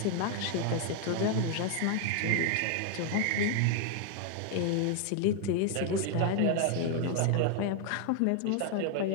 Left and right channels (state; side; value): different; both; correlation 0.00